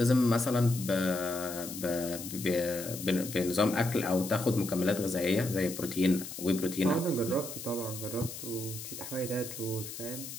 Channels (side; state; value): left; noise; hiss, 10 dB below the sound